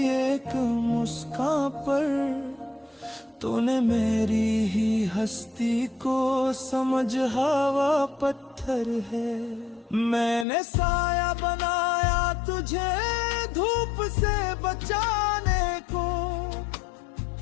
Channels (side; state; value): right; drops out; at 10.5 s